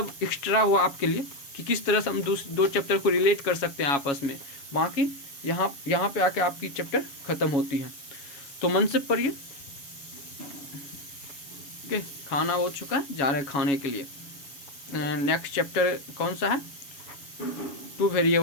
एक्स्ट्रा हुआ आपके लिए कि किस तरह से हम दो चैप्टर को रिलेट कर सकते हैं आपस में। बाकी यहाँ पे आके आपकी चैप्टर ख़त्म होती है। तो मन से पढ़िए। ओके, खाना हो चुका है, जा रहे हैं खाने के लिए। नेक्स्ट चैप्टर कौन सा है, 2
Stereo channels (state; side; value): late; right; 7.2 ms